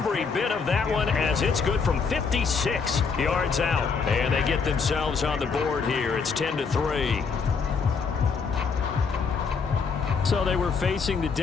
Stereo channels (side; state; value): right; quieter; 5.4 dB